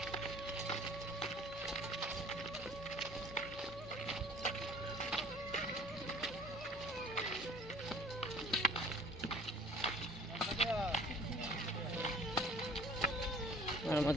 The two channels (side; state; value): both; normal; correlation 0.51